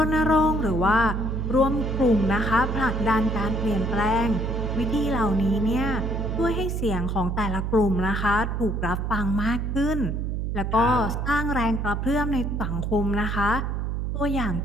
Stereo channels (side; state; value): right; noise; hum, 1 dB below the sound